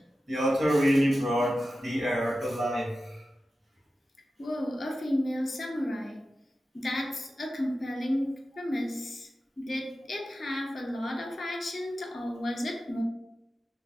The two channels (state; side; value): normal; both; correlation 0.93